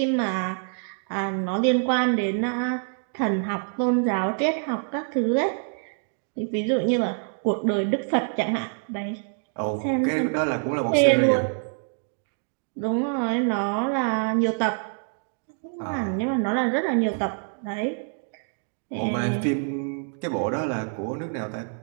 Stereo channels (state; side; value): silent; left; 61 dB below the other